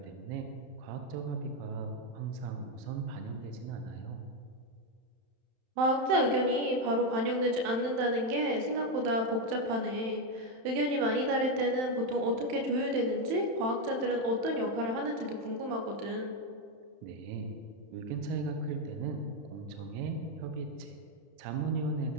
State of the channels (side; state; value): left; late; 31 ms